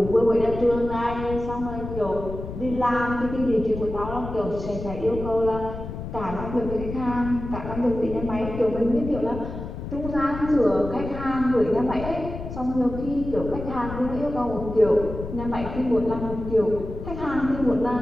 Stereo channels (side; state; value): left; noise; rumble, 8 dB below the sound